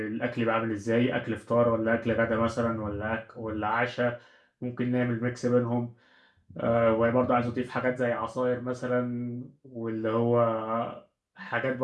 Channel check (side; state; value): both; identical; correlation 1.00